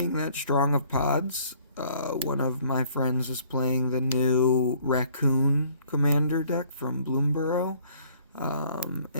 that strong of pods. One of my friends was playing the new Raccoon Commander deck from Bloomborough.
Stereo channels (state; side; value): inverted; both; correlation -0.59